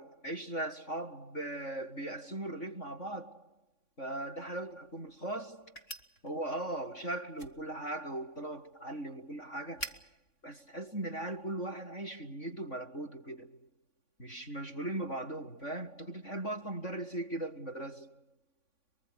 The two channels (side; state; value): right; late; 3.6 ms